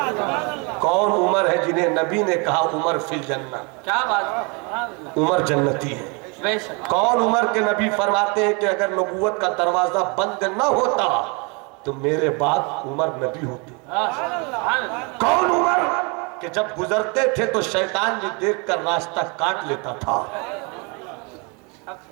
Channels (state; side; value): quieter; left; 31.7 dB